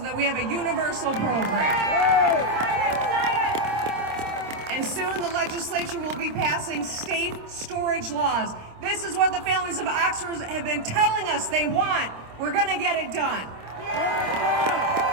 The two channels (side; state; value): left; late; 26 ms